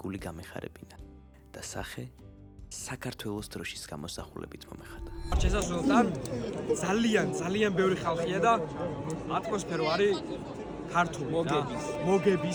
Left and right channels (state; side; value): identical; both; correlation 1.00